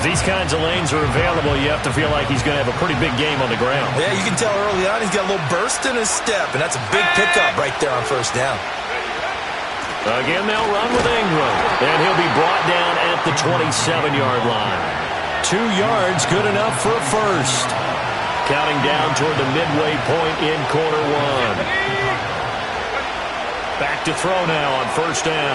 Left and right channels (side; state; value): both; identical; correlation 1.00